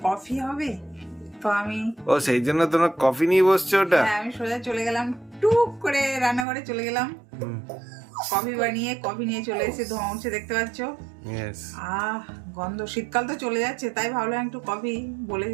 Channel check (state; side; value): drops out; left; at 6.5 s